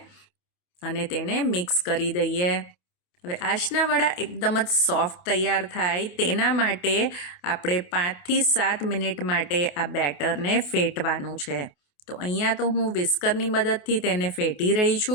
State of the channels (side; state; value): right; late; 28 ms